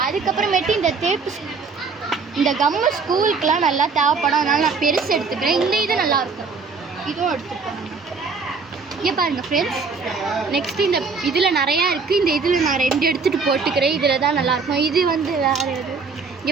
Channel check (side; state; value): left; quieter; 4.7 dB